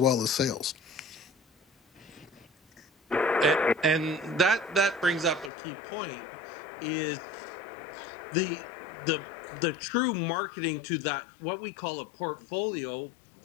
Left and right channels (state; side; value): drops out; right; at 5.5 s